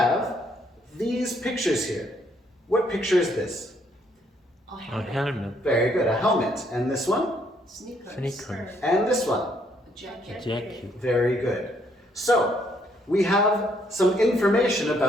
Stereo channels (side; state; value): both; normal; correlation 0.70